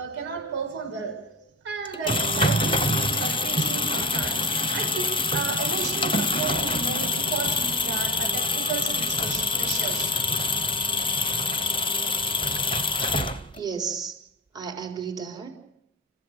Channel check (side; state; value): both; normal; correlation 0.25